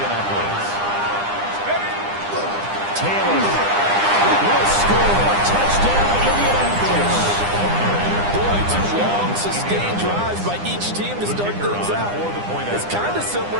Taylor. Will score. Touchdown, Indianapolis. Boy, 2 long, sustained drives by each team to start things out. It's kind of similar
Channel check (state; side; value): late; left; 9.9 ms